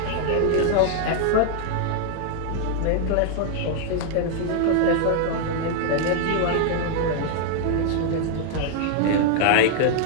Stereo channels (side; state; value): both; different; correlation 0.00